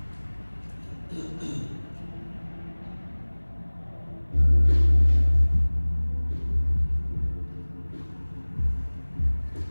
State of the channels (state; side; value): inverted; both; correlation -1.00